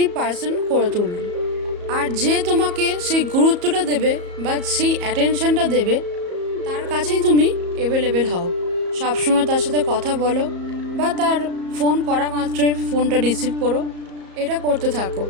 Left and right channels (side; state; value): left; late; 34 ms